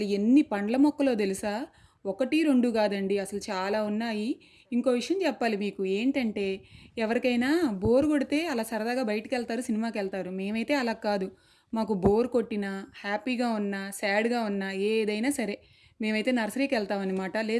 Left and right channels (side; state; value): both; identical; correlation 1.00